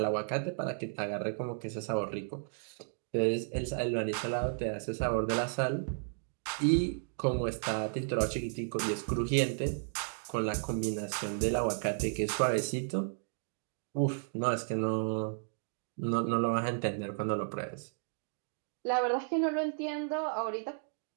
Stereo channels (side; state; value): left; silent; digital silence